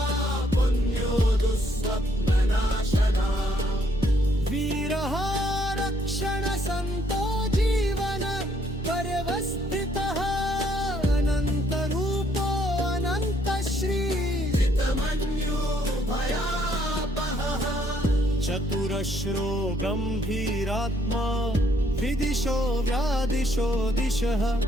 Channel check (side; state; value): both; normal; correlation 0.68